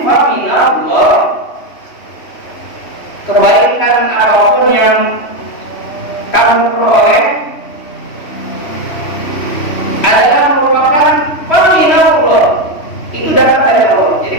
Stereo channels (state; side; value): late; right; 3.1 ms